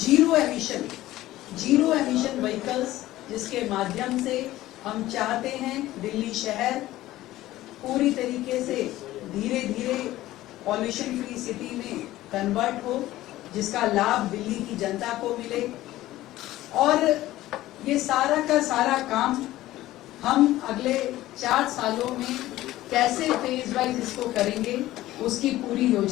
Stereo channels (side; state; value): right; quieter; 15.7 dB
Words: एमिशन व्हीकल्स, जिसके माध्यम से हम चाहते हैं दिल्ली शहर पूरी तरीके से धीरे धीरे पॉल्यूशन फ्री सिटी में कन्वर्ट हो, जिसका लाभ दिल्ली की जनता को मिले, और ये सारा का सारा काम हम अगले 4 सालों में कैसे फेज वाइज इसको करेंगे उसकी पूरी